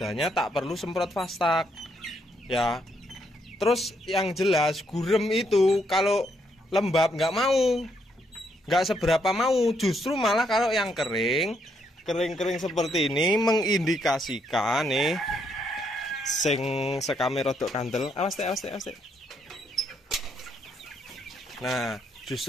tak perlu semprot Fastak. Ya. Terus yang jelas gurem itu kalau lembab nggak mau. Nggak seberapa mau, justru malah kalau yang kering seperti ini mengindikasikan nih sing sekame rodok kandel. Awas teh. Nah,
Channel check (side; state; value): both; normal; correlation 0.74